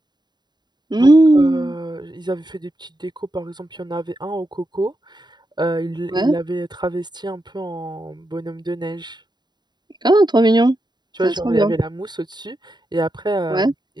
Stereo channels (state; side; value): late; left; 0.21 ms